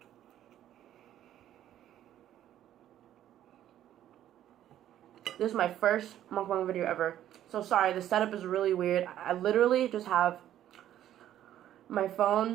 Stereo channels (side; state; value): left; quieter; 11.8 dB